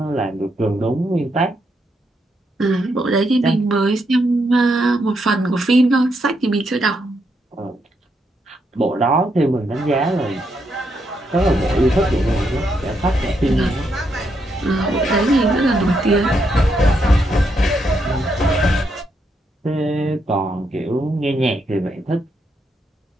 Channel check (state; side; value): normal; both; correlation 0.79